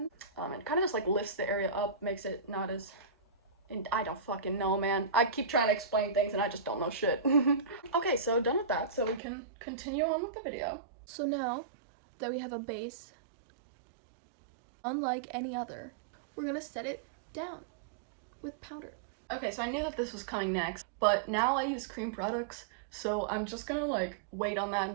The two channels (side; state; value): left; drops out; at 9.2 s